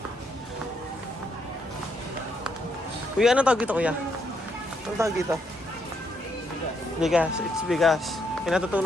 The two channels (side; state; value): both; normal; correlation 0.76